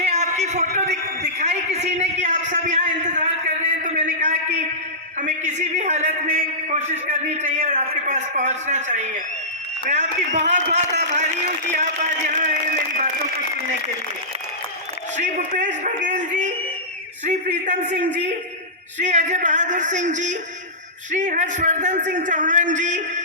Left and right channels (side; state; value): both; normal; correlation -0.17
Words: आपकी फोटो दिखाई किसी ने कि आप सब यहाँ इंतजार कर रहे हैं, तो मैंने कहा कि हमें किसी भी हालत में कोशिश करनी चाहिए और आपके पास पहुँचना चाहिए। मैं आपकी बहुत बहुत आभारी हूँ कि आप आज यहाँ आए मेरी बातों को सुनने के लिए। श्री भूपेश बघेल जी, श्री प्रीतम सिंह जी, श्री अजय बहादुर सिंह जी, श्री हर्षवर्धन सिंह चौहान जी,